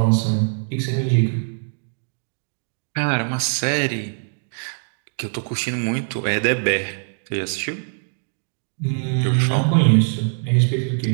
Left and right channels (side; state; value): left; silent; digital silence